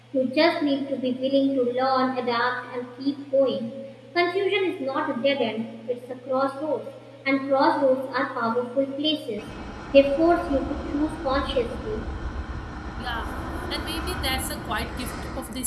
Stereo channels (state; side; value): identical; both; correlation 1.00